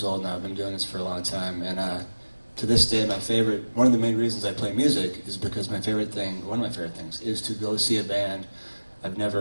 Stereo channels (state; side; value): inverted; both; correlation -1.00